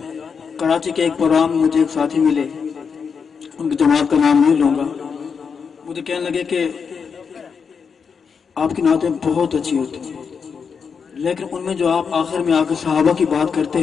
کراچی کے ایک پروگرام مجھے ایک ساتھی ملے، ان کی جماعت کا نام نہیں لوں گا، مجھے کہنے لگے کہ آپ کی نعتیں بہت اچھی ہوتی ہیں، لیکن ان میں جو آپ آخر میں آ کے صحابہ کی بات کرتے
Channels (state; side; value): quieter; right; 6.0 dB